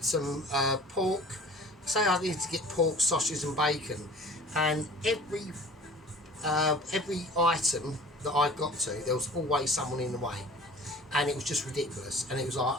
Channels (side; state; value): both; normal; correlation 0.45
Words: pork. Say I needed to get pork, sausage and bacon, and every item that I got to, there was always someone in the way. And it was just ridiculous, and it was like,